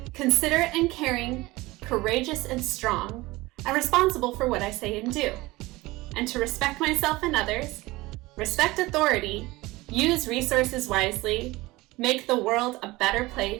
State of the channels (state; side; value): quieter; left; 20.4 dB